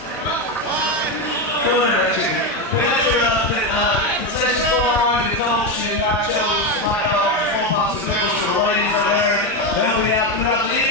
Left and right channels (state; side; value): normal; both; correlation 0.11